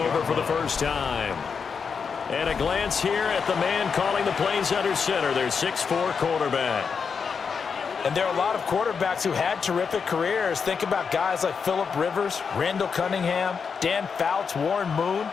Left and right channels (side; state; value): right; quieter; 5.9 dB